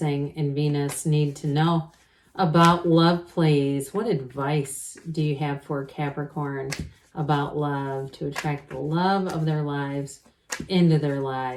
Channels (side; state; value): both; identical; correlation 1.00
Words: and Venus need to know about love, please? What advice do you have for Capricorn about love to attract the love of their lives into their